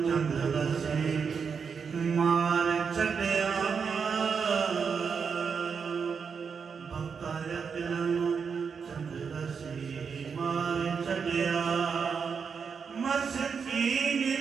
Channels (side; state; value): left; quieter; 6.1 dB